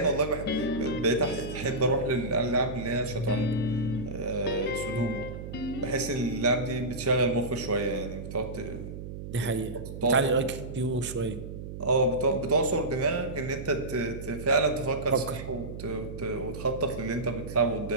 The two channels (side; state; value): right; noise; hum, 9 dB below the sound